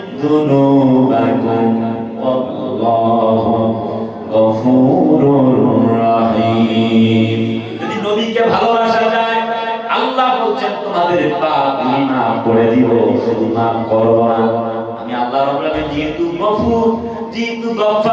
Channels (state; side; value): identical; both; correlation 1.00